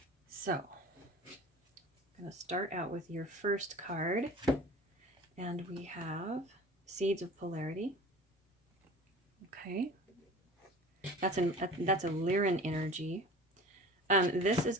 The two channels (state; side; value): normal; both; correlation 0.40